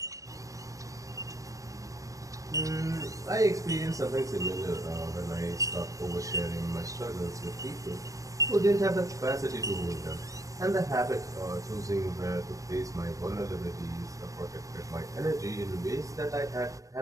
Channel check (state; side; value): late; left; 0.16 ms